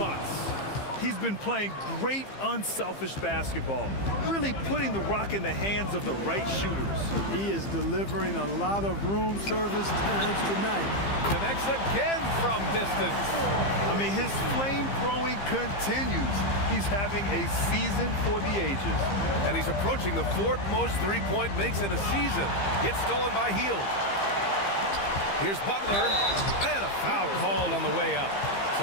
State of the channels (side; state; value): right; late; 15 ms